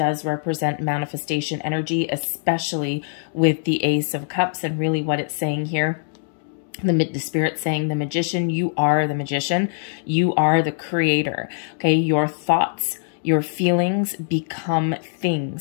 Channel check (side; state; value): right; silent; digital silence